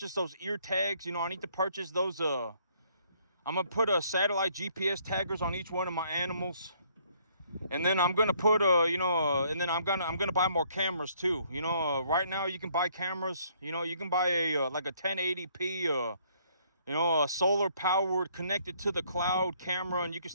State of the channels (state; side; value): inverted; both; correlation -0.65